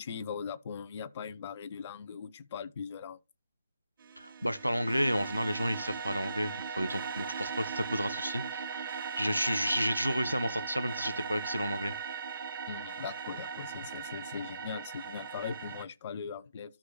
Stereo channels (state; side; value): inverted; both; correlation -0.81